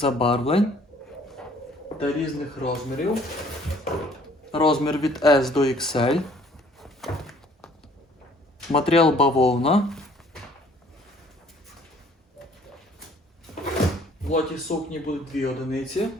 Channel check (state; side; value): normal; both; correlation 0.57